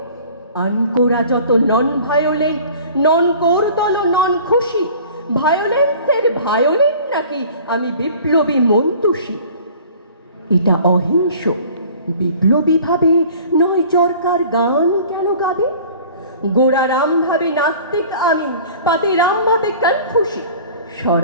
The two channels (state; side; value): inverted; both; correlation -0.47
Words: আনকোরা যত নন ভায়োলেন্ট, নন কোরদল নন খুশি। ভায়োলেন্সের ভায়োলেন্ট নাকি আমি বিপ্লবী মন্তুষী। এটা অহিংস বিপ্লবী ভাবে নয় চরকার গান কেন গাবে। গোড়া রাম ভাবে নাস্তিক আমি, পাতি রাম ভাবে কনফুসি।